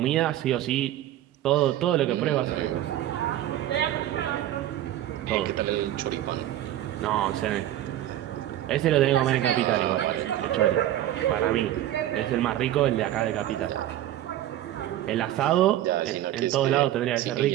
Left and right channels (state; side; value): quieter; left; 13.0 dB